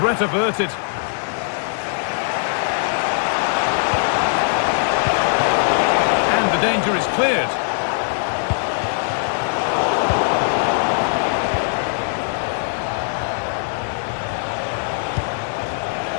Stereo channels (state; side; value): silent; right; digital silence